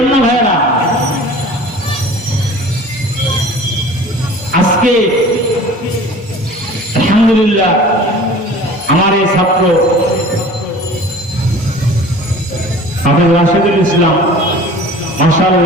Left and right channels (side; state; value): both; normal; correlation 0.43